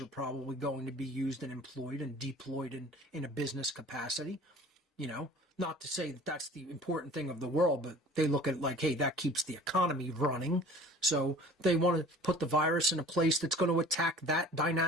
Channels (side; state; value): both; normal; correlation 0.46